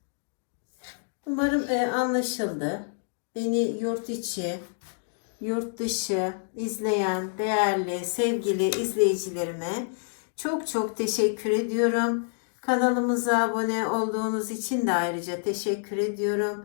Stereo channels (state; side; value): silent; right; digital silence